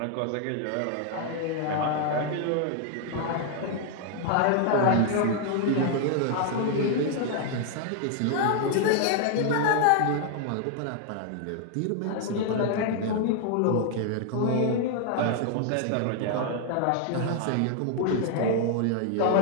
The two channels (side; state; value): both; different; correlation 0.00